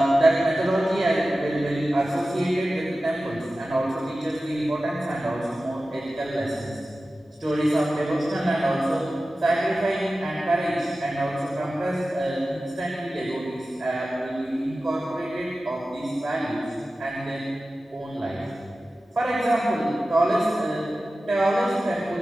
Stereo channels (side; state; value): both; normal; correlation 0.95